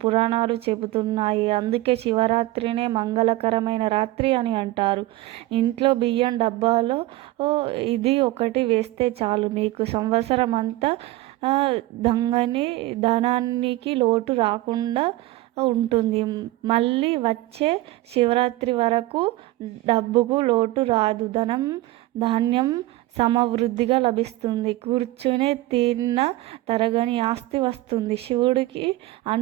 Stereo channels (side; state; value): left; quieter; 17.5 dB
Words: పురాణాలు చెబుతున్నాయి. అందుకే శివరాత్రినే మంగళకరమైన రాత్రి అని అంటారు. ఇంట్లో బియ్యం డబ్బాలో ఇది ఒకటి వేస్తే చాలు, మీకు సంవత్సరం అంతా ధనానికి లోటు రాకుండా ఉంటుంది. మళ్ళీ వచ్చే శివరాత్రి వరకు డబ్బుకు లోటు రాదు. ధాన్యం సమవృద్ధిగా లభిస్తుంది. కూర్చునే తిన్న తరగని ఆస్తి వస్తుంది. శివుడికి